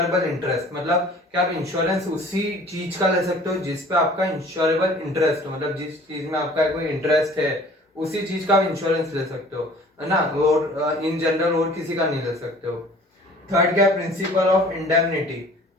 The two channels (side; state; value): both; normal; correlation 0.49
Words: interest. मतलब क्या आप इंश्योरेंस उसी चीज का ले सकते हो जिस पे आपका इंश्योरेबल इंटरेस्ट हो, मतलब जिस चीज में आपका कोई इंटरेस्ट है उसी चीज का आप इंश्योरेंस ले सकते हो, है ना। और इन जनरल और किसी का नहीं ले सकते हो। थर्ड क्या? Principle of indemnity.